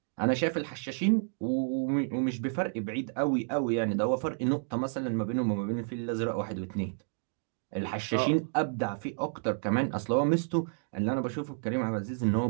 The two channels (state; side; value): silent; left; digital silence